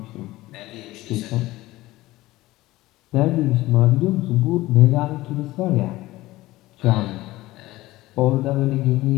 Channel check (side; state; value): right; quieter; 17.9 dB